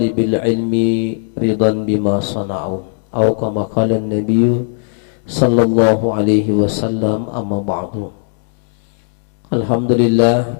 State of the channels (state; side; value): silent; right; digital silence